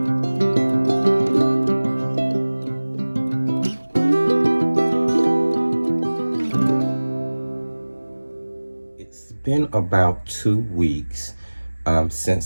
Been about 2 weeks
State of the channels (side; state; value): both; inverted; correlation -1.00